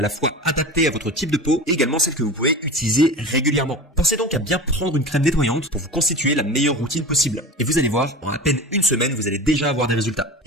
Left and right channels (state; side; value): normal; both; correlation 0.32